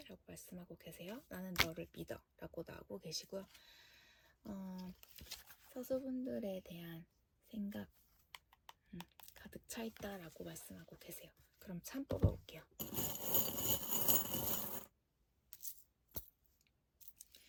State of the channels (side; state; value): both; identical; correlation 1.00